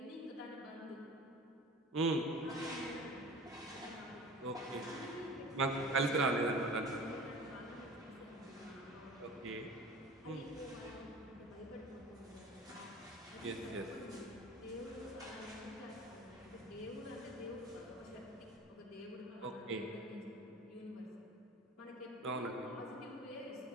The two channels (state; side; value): normal; both; correlation 0.40